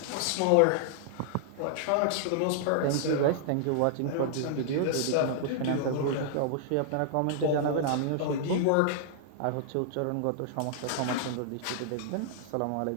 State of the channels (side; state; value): both; different; correlation -0.01